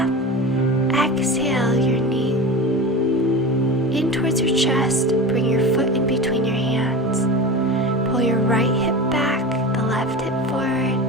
Exhale, your knee in towards your chest. Bring your foot in between your hands. Pull your right hip back, the left hip forward.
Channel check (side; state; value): both; normal; correlation 0.29